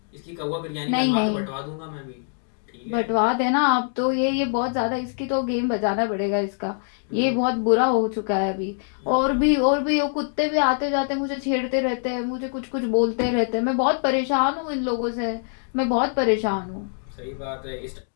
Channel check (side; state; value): right; silent; 60 dB below the other